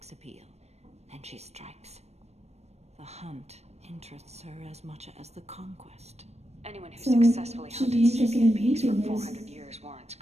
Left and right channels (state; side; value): late; left; 0.31 ms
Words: appeal. Then she strikes. The hunt interests her as much as the conquest. Anyone who So, successfully should hunted be interested sentient in beings for VTubers. 400 years warrants Is